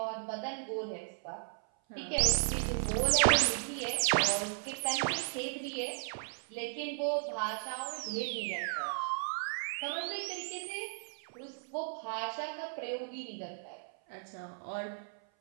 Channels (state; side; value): silent; left; 54 dB below the other